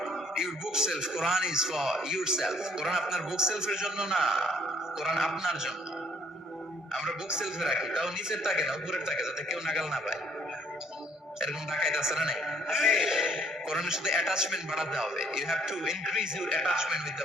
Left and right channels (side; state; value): both; normal; correlation 0.62